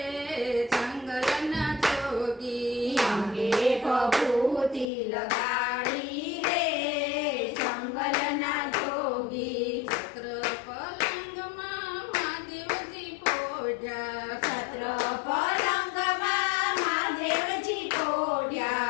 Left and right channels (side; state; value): right; drops out; at 4.9 s